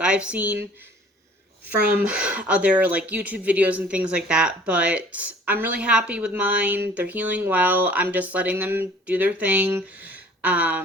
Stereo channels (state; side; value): normal; both; correlation 0.52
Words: I've seen. from other like YouTube videos and things like that, but I'm really happy with mine. They're healing well. I'm just letting them do their thing.